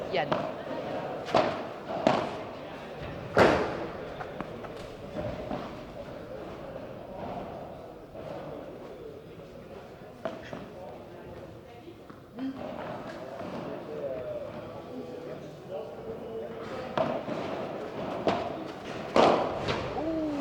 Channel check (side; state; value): both; identical; correlation 1.00